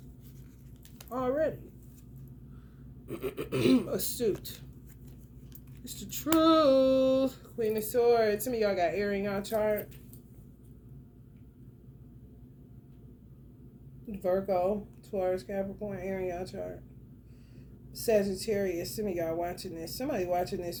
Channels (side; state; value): both; identical; correlation 1.00